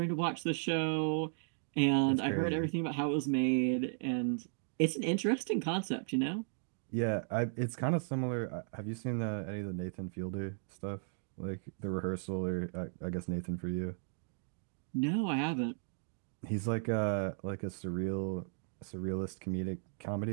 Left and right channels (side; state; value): left; silent; digital silence